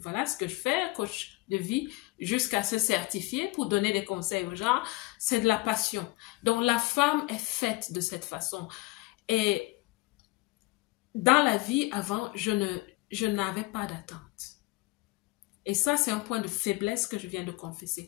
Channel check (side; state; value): right; quieter; 22.4 dB